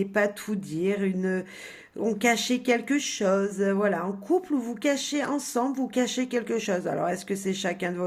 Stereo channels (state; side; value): identical; both; correlation 1.00